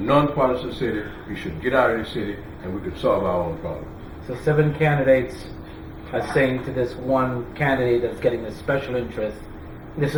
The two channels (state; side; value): identical; both; correlation 1.00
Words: city. You should get out of the city and we could solve our own problems. So 7 candidates are saying to this one candidate that's getting the special interest, this